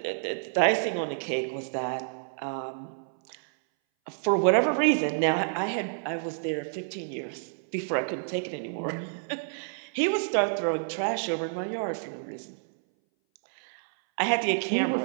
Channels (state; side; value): silent; left; 59 dB below the other